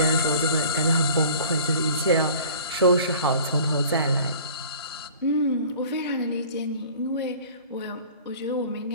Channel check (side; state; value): both; inverted; correlation -0.47